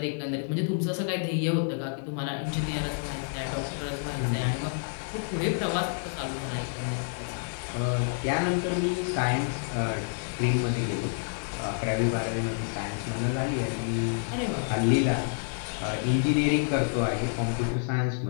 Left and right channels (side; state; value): right; silent; digital silence